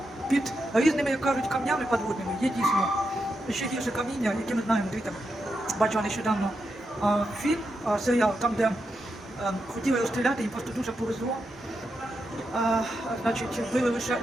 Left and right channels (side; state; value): both; normal; correlation 0.85